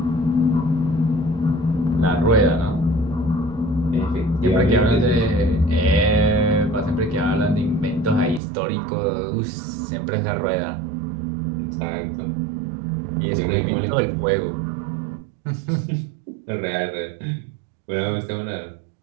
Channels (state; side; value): drops out; left; at 8.4 s